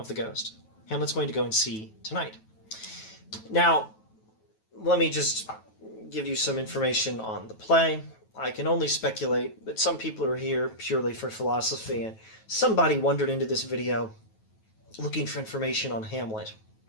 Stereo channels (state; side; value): late; right; 9.2 ms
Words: the ghost. Hamlet's going to go and see tonight. Now, let me just give you some information on the play. I can only speculate that some people are here purely for philosophy, and somebody wandered into this video looking for information on Hamlet.